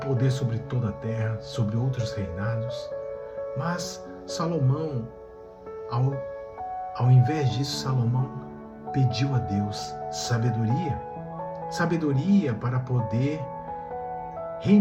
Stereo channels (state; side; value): identical; both; correlation 1.00